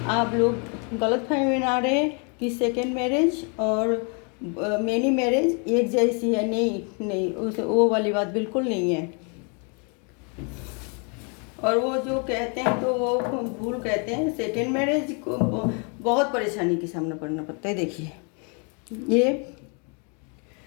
आप लोग गलतफहमी में ना रहे कि सेकेंड मैरिज और मैनी मैरिज एक जैसी है। नहीं, उस वो वाली बात बिल्कुल नहीं है। और वो जो कहते हैं तो वो भूल कहते हैं। सेकेंड मैरिज को बहुत परेशानी का सामना करना पड़ता है। देखिए ये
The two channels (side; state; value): right; quieter; 36.8 dB